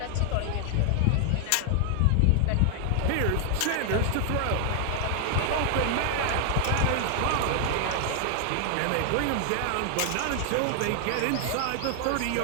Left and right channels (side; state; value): both; different; correlation 0.00